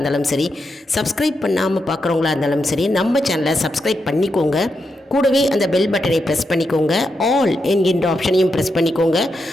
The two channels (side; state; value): both; normal; correlation 0.85